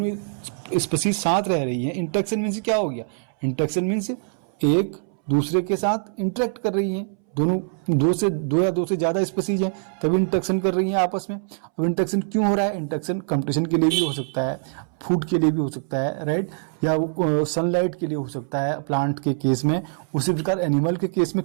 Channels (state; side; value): silent; left; 63 dB below the other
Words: ही स्पीसीज साथ रह रही है। इंटरेक्शन मीन्स क्या हो गया, इंटरेक्शन मीन्स एक दूसरे के साथ इंटरेक्ट कर रही है, दोनों दो या दो से ज्यादा स्पीसीज हैं तभी इंटरेक्शन कर रही हैं आपस में। अब इंटरेक्शन क्यों हो रहा है, इंटरेक्शन कंपटीशन के लिए भी हो सकता है, फूड के लिए भी हो सकता है, राइट, या सनलाइट के लिए हो सकता है प्लांट के केस में, उसी प्रकार एनिमल के केस में